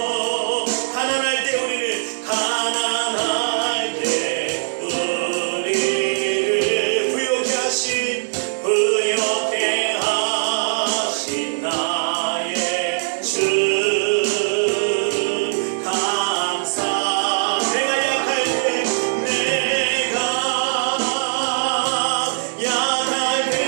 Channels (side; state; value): left; silent; digital silence